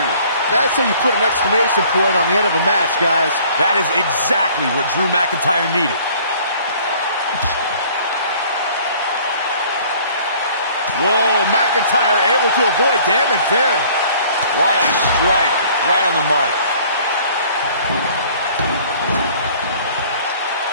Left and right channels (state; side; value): inverted; both; correlation -0.54